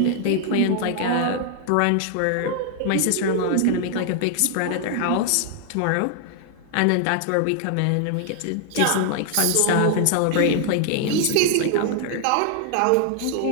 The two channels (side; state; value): both; different; correlation 0.00